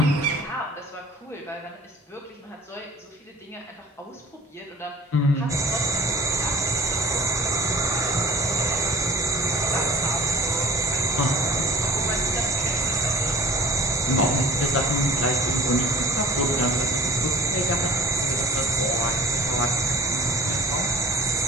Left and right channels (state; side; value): normal; both; correlation 0.47